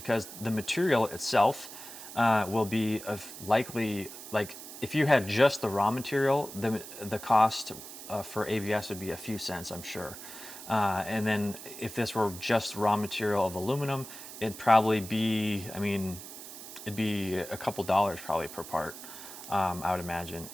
the material itself will be likely, like, if you had just the raw material, the cost for ABS would be a few cents, I'm sure. And then if this were just raw material of aluminum, it'd probably be, I mean, it'd be a couple dollars probably per part, I would imagine.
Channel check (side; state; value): right; noise; hiss, 13 dB below the sound